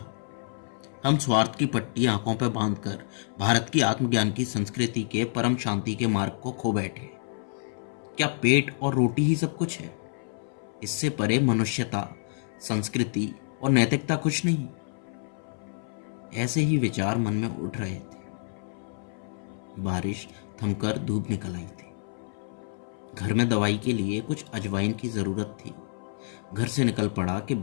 हम स्वार्थ की पट्टी आंखों पर बांधकर भारत की आत्मज्ञान की संस्कृति के परम शांति के मार्ग को खो बैठे। क्या पेट और रोटी ही सब कुछ है? इससे परे मनुष्यता, संस्कृति और नैतिकता कुछ नहीं। ऐसे ही विचार मन में उठ रहे थे। बारिश थमकर धूप निकल आई थी। घर में दवाई के लिए कुछ अजवाइन की जरूरत थी। घर से निकल पड़ा कि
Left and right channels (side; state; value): right; silent; 59 dB below the other